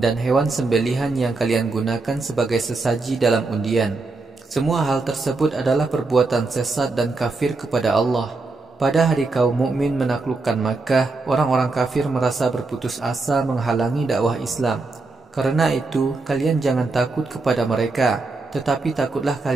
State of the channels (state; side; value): quieter; left; 3.6 dB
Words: hewan sembelihan yang kalian gunakan sebagai sesaji dalam undian. Semua hal tersebut adalah perbuatan sesat dan kafir kepada Allah. Pada hari kaum mukmin menaklukkan Makkah, orang-orang kafir merasa berputus asa menghalangi dakwah Islam. Karena itu, kalian jangan takut kepada mereka, tetapi takutlah